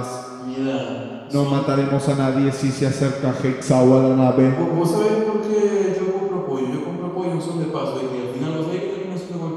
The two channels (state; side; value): identical; both; correlation 1.00